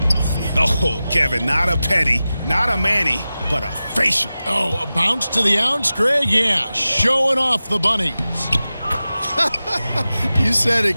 Oh, Kevin, not a petty, not a Manny, but a facial. Oh, a bounce to the ounce, Greg? Yeah, showing off the bunnies. You said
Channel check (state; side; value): inverted; both; correlation -0.95